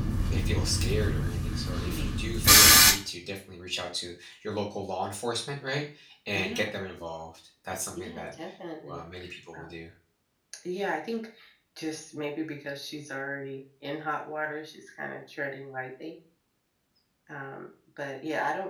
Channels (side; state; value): both; identical; correlation 1.00